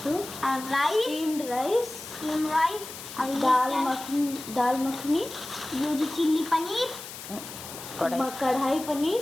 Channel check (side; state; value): left; noise; hiss, 12 dB below the sound